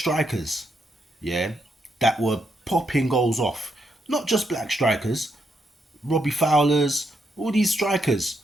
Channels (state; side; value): normal; both; correlation 0.79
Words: yeah, that were popping goals off. Not just black strikers, Robbie Fowlers, all these strikers